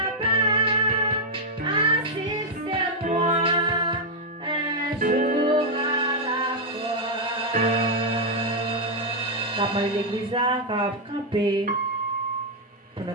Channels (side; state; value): both; normal; correlation -0.02